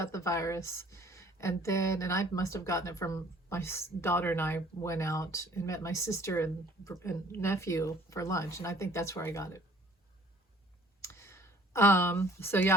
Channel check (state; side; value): normal; both; correlation 0.54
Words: the virus. And I must have gotten it from my daughter, and I went out and met my sister and nephew for lunch. And I think that's where I got it. So yeah,